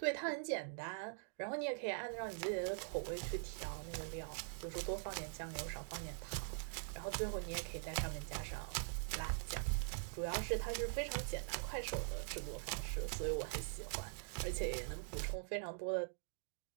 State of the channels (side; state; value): left; silent; digital silence